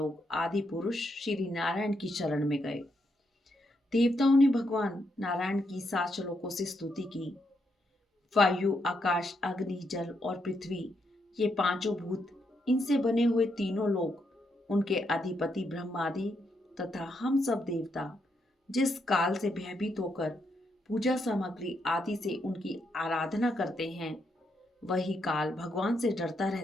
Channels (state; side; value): normal; both; correlation 0.79